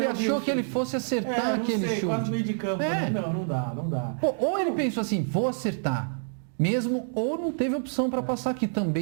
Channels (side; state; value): left; silent; digital silence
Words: achou que ele fosse acertar aquele chute. Quase meio de campo, né? Não dá. Ou ele pensou assim, vou acertar. Mesmo, ou não teve opção para passar, que